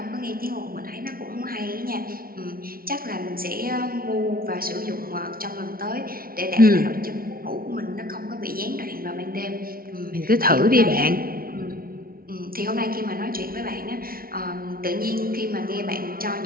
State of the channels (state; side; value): late; left; 0.43 ms